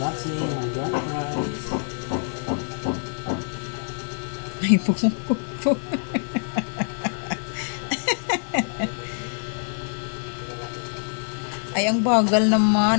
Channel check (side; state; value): right; silent; digital silence